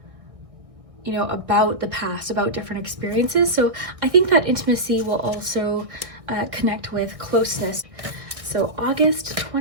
you know, about the past, about different experiences. So I think that intimacy will also connect with closeness. So August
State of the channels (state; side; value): late; left; 1.6 ms